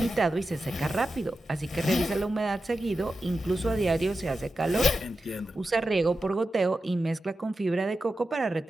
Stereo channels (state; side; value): normal; both; correlation 0.91